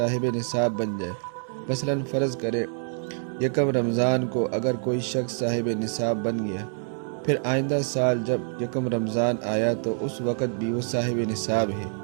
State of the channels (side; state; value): left; silent; 61 dB below the other